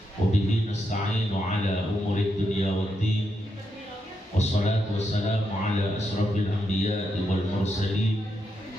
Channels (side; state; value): both; normal; correlation 0.82